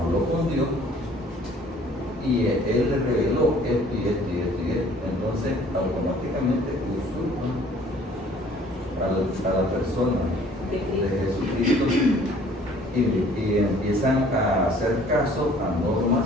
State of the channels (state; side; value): normal; both; correlation 0.55